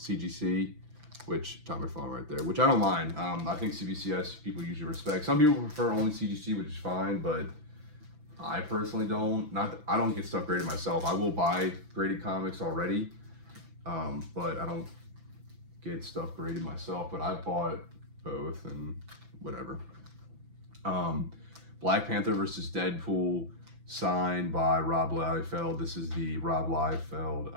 which Todd McFarlane right there, which I don't mind. I think CBCS people usually respect. Some people prefer only CGC, which is fine, but I personally don't. I don't get stuff graded myself. I will buy graded comics already, but I don't get stuff graded myself. But I bought both and whatever. Black Panther versus Deadpool, signed by Rob Liefeld. This is the Rob Liefeld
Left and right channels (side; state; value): left; late; 6.0 ms